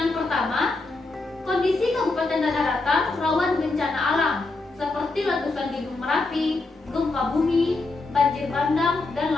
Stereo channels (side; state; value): right; quieter; 3.4 dB